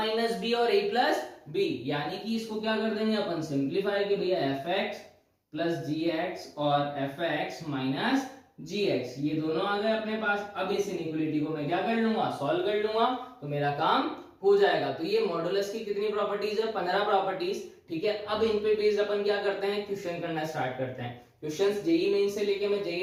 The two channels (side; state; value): both; identical; correlation 1.00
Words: बी और a प्लस बी। यानी कि इसको क्या कर देंगे अपन, सिंप्लीफाई कि भैया fx प्लस gx और fx माइनस gx, ये दोनों आ गए अपने पास। अब इस इनइक्वालिटी को मैं क्या कर लूंगा, सॉल्व कर लूंगा, तो मेरा काम हो जाएगा। तो ये मॉडुलस की कितनी प्रॉपर्टीज है, 15 प्रॉपर्टीज। ठीक है, अब इन पे बेस्ड अपन क्या करते हैं, क्वेश्चन करना स्टार्ट करते हैं। क्वेश्चंस जेई मेन से लेके मैं जेई